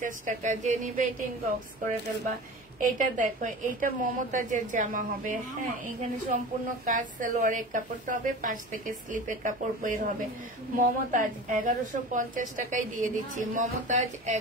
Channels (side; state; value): both; normal; correlation 0.35